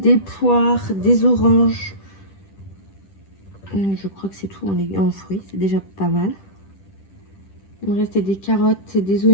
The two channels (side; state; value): right; late; 10 ms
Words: poires, des oranges. Je crois que c'est tout en fruits, c'est déjà pas mal. Il me restait des carottes et des